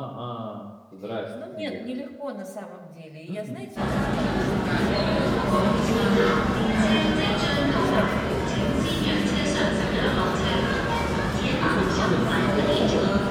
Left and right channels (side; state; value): both; identical; correlation 1.00